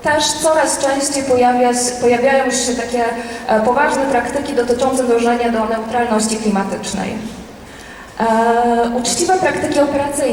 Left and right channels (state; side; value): identical; both; correlation 1.00